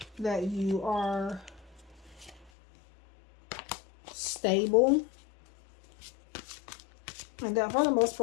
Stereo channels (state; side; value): drops out; right; at 2.5 s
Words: that you are stable. And that for the most